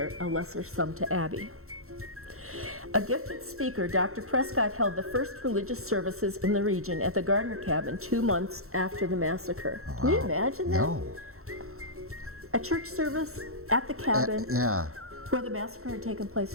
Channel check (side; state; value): left; late; 0.63 ms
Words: a lesser sum to Abby. A gifted speaker, Dr. Prescott held the first religious services in the region at the Gardner cabin 2 months after the massacre. Wow. Can you imagine that? No. A church service at the cabin where the massacre had taken place